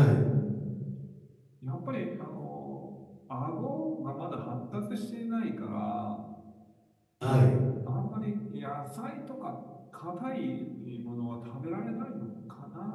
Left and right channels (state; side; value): identical; both; correlation 1.00